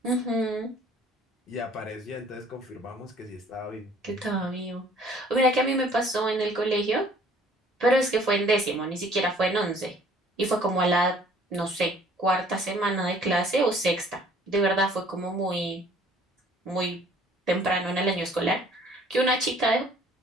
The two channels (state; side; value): normal; both; correlation 0.56